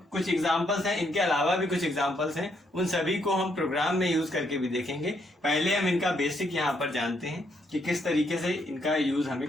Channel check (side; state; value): both; normal; correlation 0.74